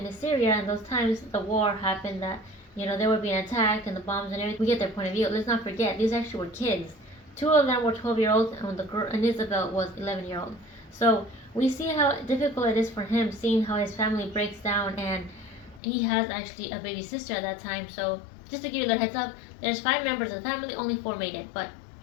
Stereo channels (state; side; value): drops out; right; at 15.8 s